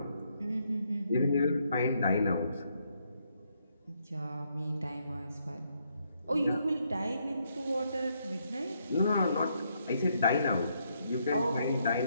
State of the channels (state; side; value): inverted; both; correlation -0.75